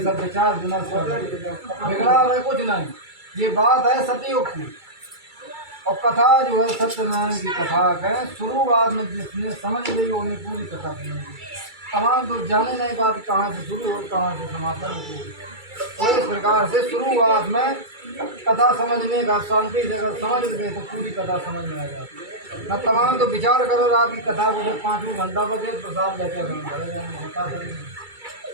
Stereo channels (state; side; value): late; left; 2.3 ms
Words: सब विचार विमर्श कर रहे थे। बिगड़ा है कुछ नहीं, ये बात है सतयुग की। और कथा जो है सत्यनारायण की कथा है। शुरुआत में जिसने समझ ली उन्हें पूरी कथा सुनेंगे। तमाम तो जाने नहीं बात कहाँ से शुरू हो कहाँ से समापन हो। तो इस प्रकार से शुरुआत में कथा समझने का शांति से अगर समझ गए तो पूरी कथा समझ में आ जाती है। न तमाम तो विचार करो रात की कथा को, जब 5 घंटा बजे प्रसाद लेके होता